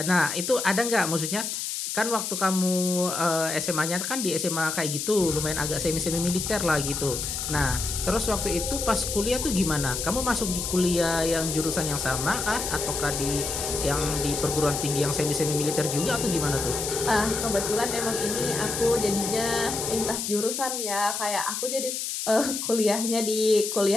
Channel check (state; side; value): noise; left; hiss, 3 dB below the sound